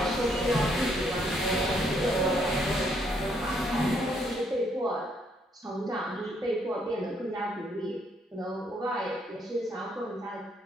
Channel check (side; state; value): both; normal; correlation 0.71